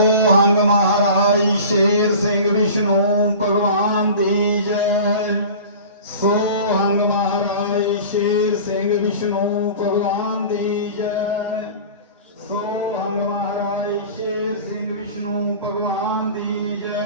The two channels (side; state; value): both; inverted; correlation -0.38